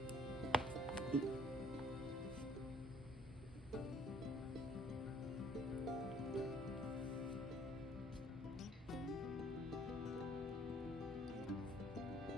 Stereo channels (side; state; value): both; normal; correlation 0.60